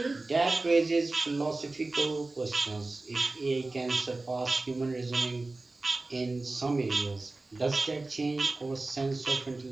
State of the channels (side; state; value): left; quieter; 3.2 dB